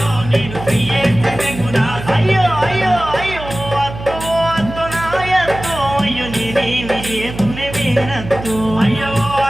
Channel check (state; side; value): noise; right; hum, 11 dB below the sound